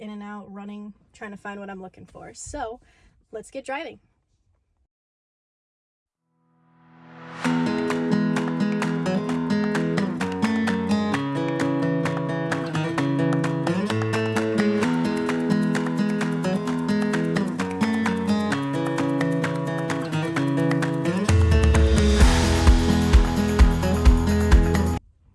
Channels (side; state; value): both; identical; correlation 1.00